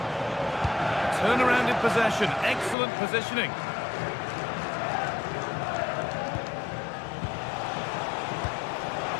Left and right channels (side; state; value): right; drops out; at 2.8 s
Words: Turnaround in possession. Excellent positioning.